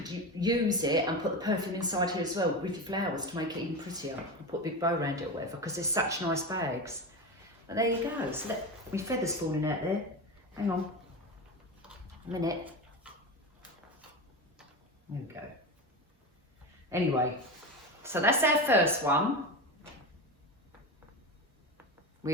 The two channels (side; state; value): both; normal; correlation 0.21